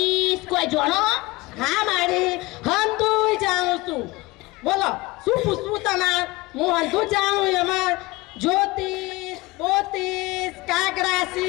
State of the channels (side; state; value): right; quieter; 21.9 dB